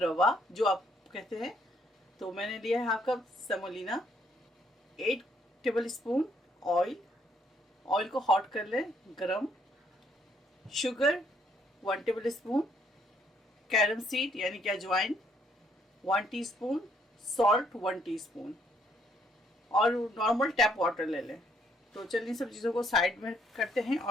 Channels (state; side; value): normal; both; correlation 0.69